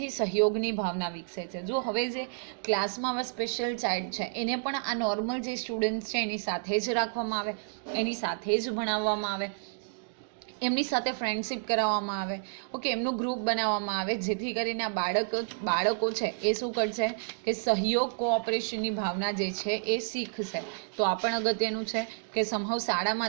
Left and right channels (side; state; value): left; silent; digital silence